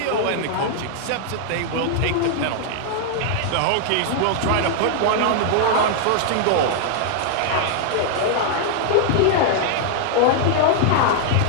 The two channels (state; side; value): different; both; correlation -0.01